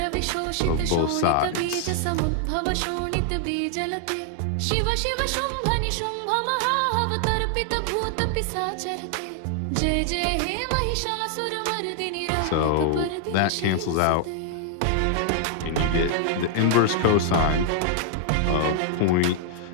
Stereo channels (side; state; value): both; different; correlation 0.00